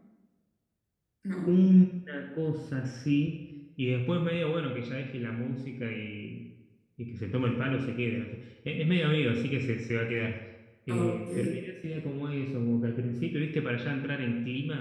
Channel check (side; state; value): both; identical; correlation 1.00